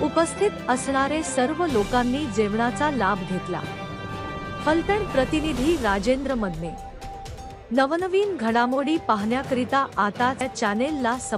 उपस्थित असणारे सर्व लोकांनी जेवणाचा लाभ घेतला. फलटण प्रतिनिधी राजेंद्र मदने. नवनवीन घडामोडी पाहण्याकरिता आता या चॅनेलला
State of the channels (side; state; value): both; identical; correlation 1.00